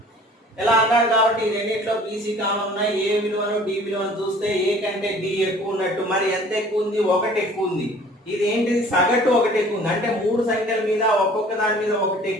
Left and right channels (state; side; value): normal; both; correlation 0.50